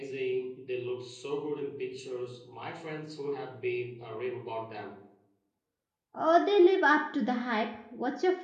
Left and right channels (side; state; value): both; identical; correlation 1.00